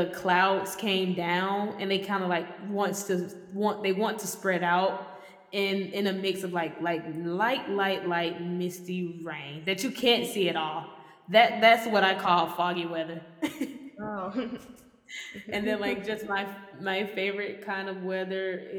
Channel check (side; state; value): both; identical; correlation 1.00